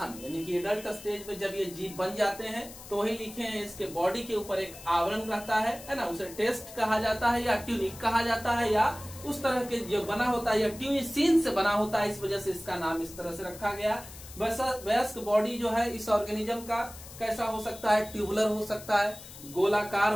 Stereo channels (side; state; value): left; noise; hiss, 16 dB below the sound